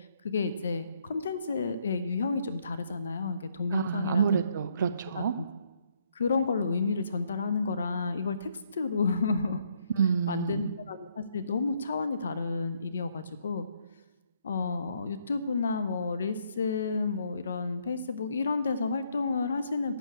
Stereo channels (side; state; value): both; inverted; correlation -0.70